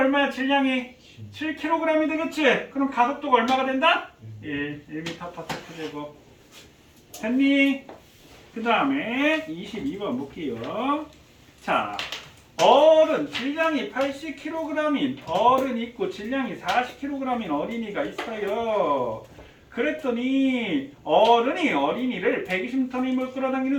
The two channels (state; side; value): identical; both; correlation 1.00